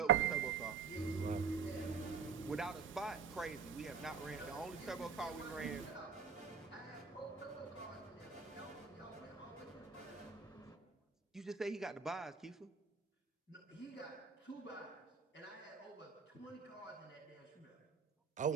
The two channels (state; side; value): quieter; left; 5.8 dB